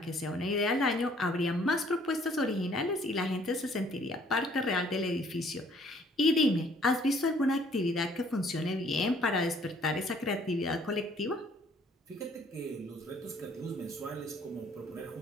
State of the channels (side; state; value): both; normal; correlation 0.60